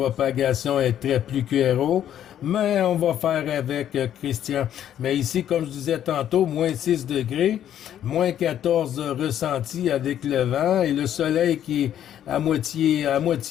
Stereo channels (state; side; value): quieter; right; 10.6 dB